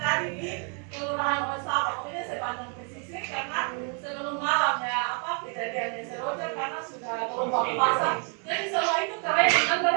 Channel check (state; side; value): quieter; left; 39.2 dB